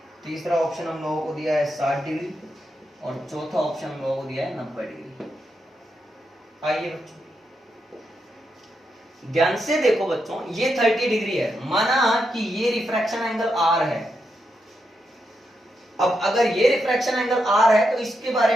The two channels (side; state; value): both; normal; correlation 0.84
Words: तीसरा ऑप्शन हम लोगों को दिया है 60 डिग्री, और चौथा ऑप्शन हम लोगों को दिया है 90 डिग्री। आइए बच्चों ध्यान से देखो बच्चों, ये 30 डिग्री है, माना कि ये रिफ्रैक्शन एंगल आर है। अब अगर ये रिफ्रैक्शन एंगल आर है तो इसके बारे